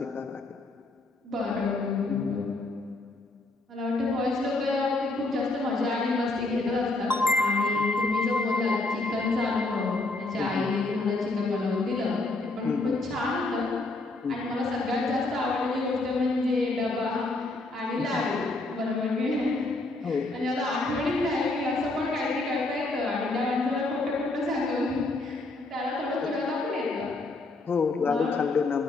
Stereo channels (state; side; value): quieter; right; 3.1 dB